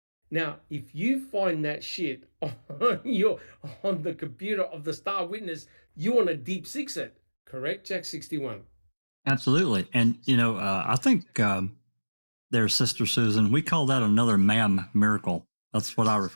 Now, if you find that shit on the computer of the star witness, you want to deep six it, correct, Jack 61? Absolutely. And, I think their sister Susan, we call that another ma'am miracle. That's what I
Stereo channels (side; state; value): both; inverted; correlation -1.00